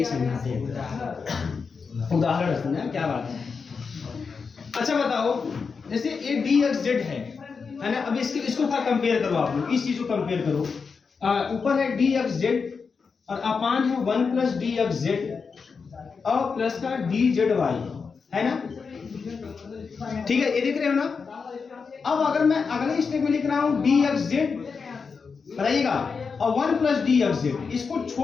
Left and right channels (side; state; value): right; quieter; 5.3 dB